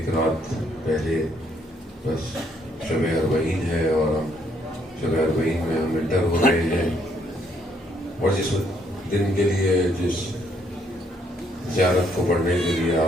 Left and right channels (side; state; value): both; normal; correlation 0.70